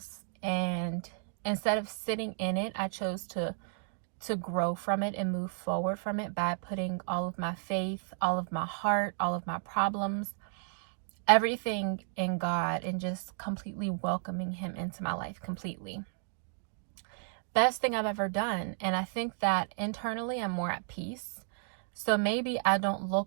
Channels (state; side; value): silent; left; digital silence